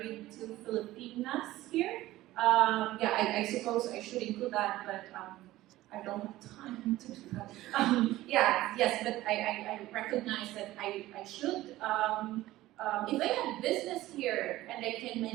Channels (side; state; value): left; quieter; 16.4 dB